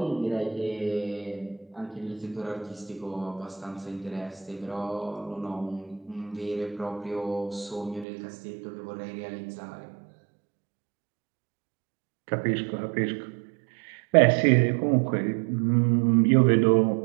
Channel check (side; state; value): left; drops out; at 8.1 s